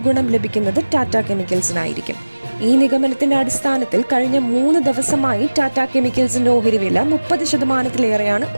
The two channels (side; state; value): both; inverted; correlation -1.00